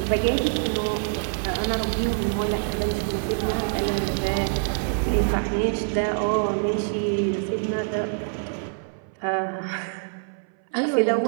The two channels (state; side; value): silent; left; 59 dB below the other